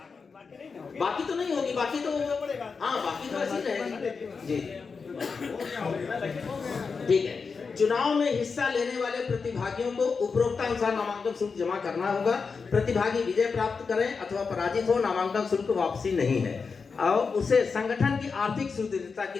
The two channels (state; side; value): quieter; right; 5.1 dB